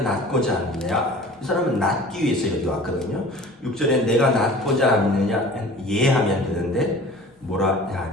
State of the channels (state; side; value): normal; both; correlation 0.43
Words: 낫고자 하느냐. 이 사람은 낫기 위해서 여기 왔거든요. 6절에 내가 낫고자 하느냐 예하면 되는데 뭐라